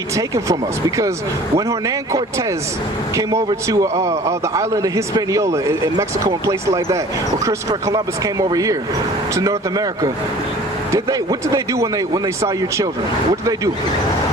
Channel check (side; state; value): both; normal; correlation 0.47